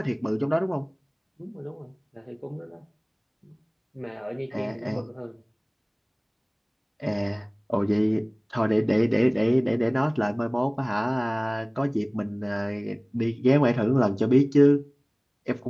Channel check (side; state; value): both; identical; correlation 1.00